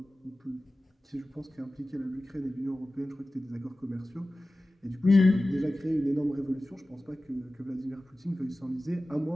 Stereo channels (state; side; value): normal; both; correlation 0.96